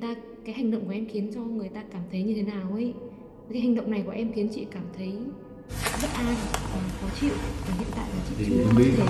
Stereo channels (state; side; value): identical; both; correlation 1.00